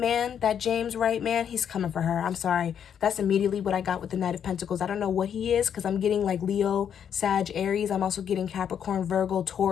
that James Wright man, he's coming for her. I'm sorry. That's immediately what I got with the Knight of Pentacles. I don't know what he is because I'm getting like Leo, Sag, Aries. I'm also getting Capricorn, Virgo,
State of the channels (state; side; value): quieter; right; 8.5 dB